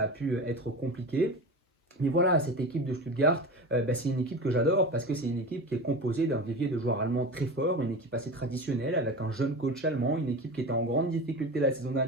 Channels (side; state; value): both; normal; correlation 0.28